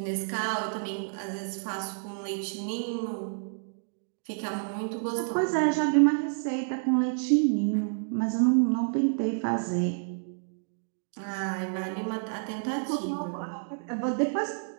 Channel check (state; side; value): silent; left; digital silence